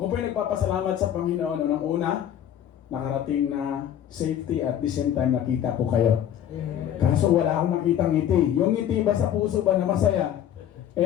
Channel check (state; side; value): quieter; right; 10.3 dB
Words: po ay nagpapasalamat sa Panginoon. Unang-una, nakarating na safety at the same time nakita ko kayo. Kaso wala akong nakitang ngiti. Yung ngiti ba sa puso ba na masaya?